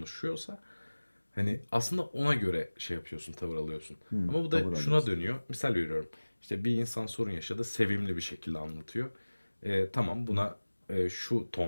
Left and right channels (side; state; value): both; inverted; correlation -1.00